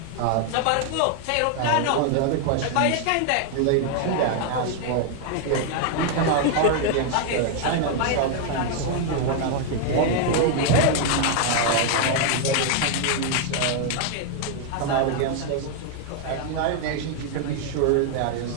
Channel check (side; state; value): both; different; correlation 0.00